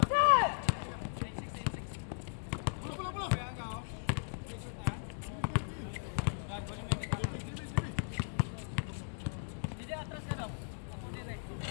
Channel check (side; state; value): right; silent; digital silence